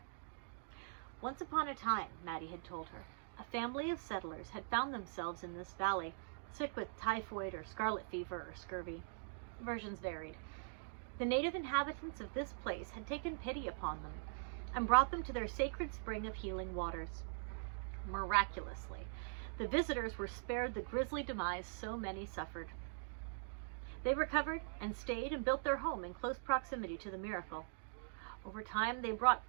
Once upon a time, Maddie had told her, a family of settlers had found themselves in this valley, sick with typhoid or scarlet fever or scurvy. Versions varied. The native inhabitants of this place had taken pity upon them and brought them to their sacred spring of healing waters. Miraculously, the visitors were spared the grisly demise so many suffered. They recovered and stayed and built their home in close proximity to the miracle. Over time, they brought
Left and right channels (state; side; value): silent; left; digital silence